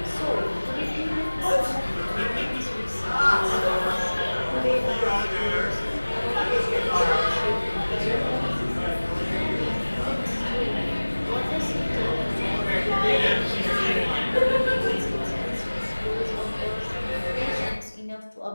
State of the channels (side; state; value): both; inverted; correlation -1.00